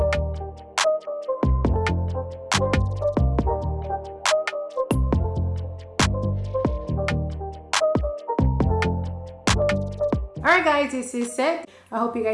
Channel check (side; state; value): both; identical; correlation 1.00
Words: right, guys, this is it. I hope you